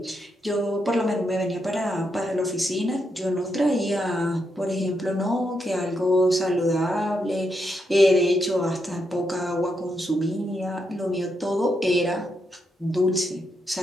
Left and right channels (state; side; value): normal; both; correlation 0.82